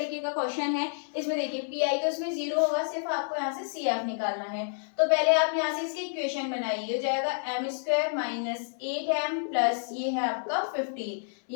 का क्वेश्चन है। इसमें देखिए PI तो इसमें 0 होगा, सिर्फ आपको यहाँ से CF निकालना है। तो पहले आप यहाँ से इसकी इक्वेशन बनाइए, हो जाएगा m² - 8m प्लस ये है आपका 15।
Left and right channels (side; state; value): right; silent; 58 dB below the other